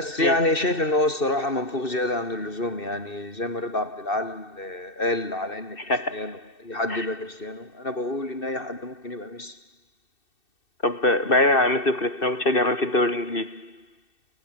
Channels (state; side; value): late; right; 2.6 ms